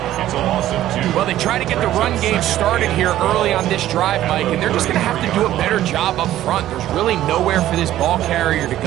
It's a loss of 2. Well, they try to get the run game started here early on this drive, Mike, and they're just going to have to do a better job up front. There's really nowhere for this ball carrier to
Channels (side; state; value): left; quieter; 13.4 dB